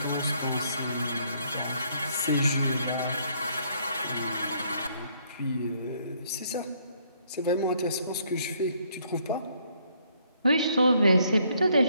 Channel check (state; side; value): inverted; both; correlation -0.68